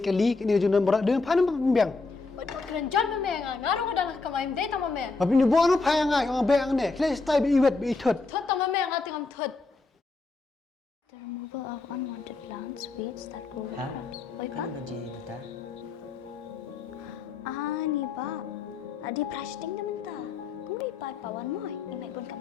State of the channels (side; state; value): right; quieter; 3.9 dB